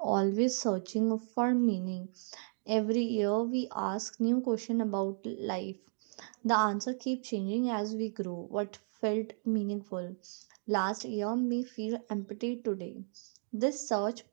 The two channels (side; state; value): left; silent; 55 dB below the other